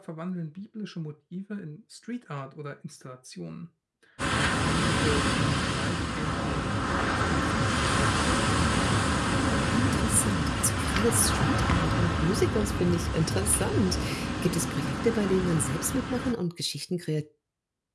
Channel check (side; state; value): both; identical; correlation 1.00